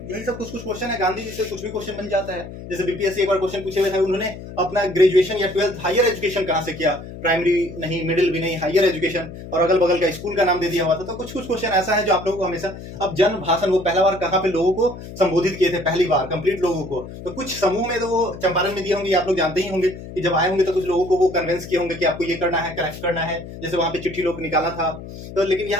सब कुछ क्वेश्चन है, गांधी जी से कुछ भी क्वेश्चन बन जाता है। जैसे बीपीएससी एक बार क्वेश्चन पूछे हुए थे, उन्होंने अपना ग्रेजुएशन या 12th हायर एजुकेशन कहाँ से किया, प्राइमरी नहीं, मिडिल भी नहीं, हायर एजुकेशन, और अगल बगल का स्कूल का नाम दे दिया हुआ था। तो कुछ कुछ क्वेश्चन ऐसा है जो आप लोगों को हमेशा, अब जन भाषण वो पहला बार कहाँ पे लोगों को संबोधित किए थे, पहली बार कंप्लीट लोगों को। तो कुछ समूह में तो वो चंपारण में दिए होंगे, आप लोग जानते ही होंगे कि जब आए होंगे तो कुछ लोगों को वो कन्विंस किए होंगे कि आपको ये करना है, करेक्ट करना है, जैसे वहां पे चिट्ठी लोग निकाला था। तो लेकिन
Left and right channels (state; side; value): noise; left; hum, 12 dB below the sound